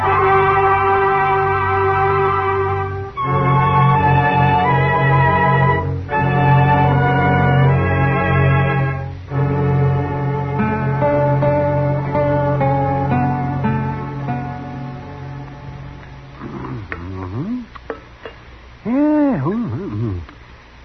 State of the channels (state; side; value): identical; both; correlation 1.00